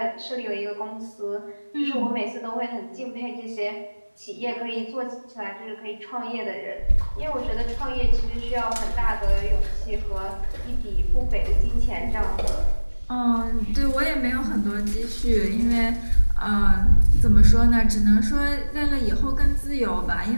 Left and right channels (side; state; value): both; inverted; correlation -1.00